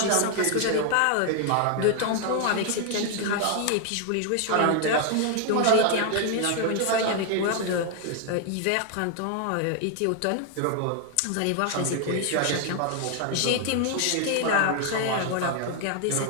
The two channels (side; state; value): both; different; correlation 0.00